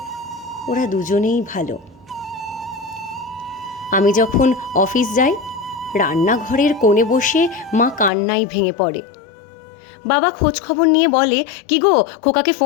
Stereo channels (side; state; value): right; drops out; at 8.1 s